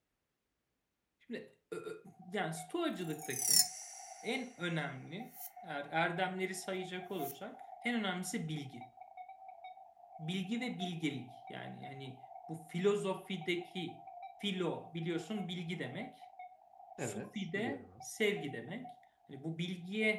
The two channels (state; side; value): identical; both; correlation 1.00